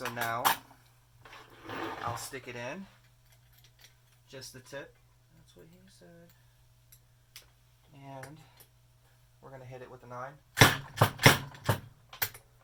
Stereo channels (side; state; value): both; identical; correlation 1.00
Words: now I'll stick it in, just the tip. That's what he said. And we're going to hit it with a 9.